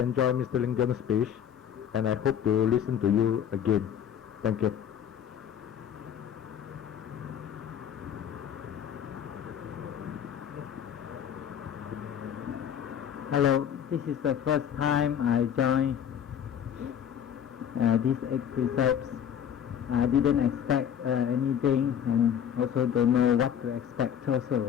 Mr. Lingam's speech, and I hope to listen to you again. Thank you. Hello, this is the first time I joined these 8 precepts. I didn't expect anything, and also don't know what to expect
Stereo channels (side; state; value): right; quieter; 9.1 dB